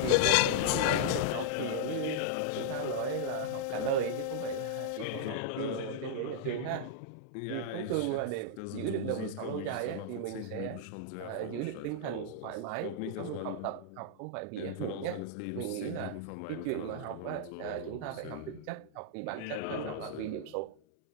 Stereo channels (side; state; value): both; different; correlation -0.02